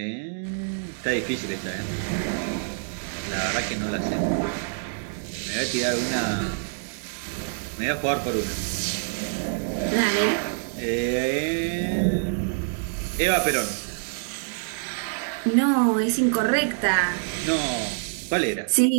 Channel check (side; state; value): left; silent; digital silence